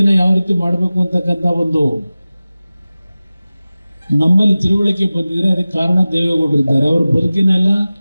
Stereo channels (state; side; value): inverted; both; correlation -0.97